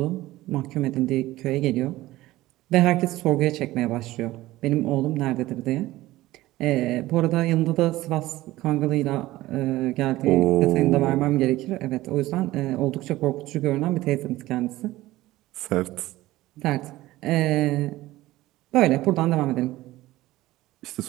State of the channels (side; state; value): left; quieter; 17.1 dB